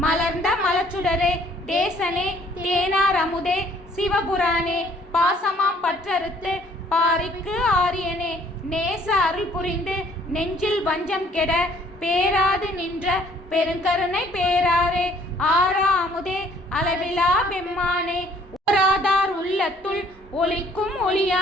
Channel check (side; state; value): both; normal; correlation 0.60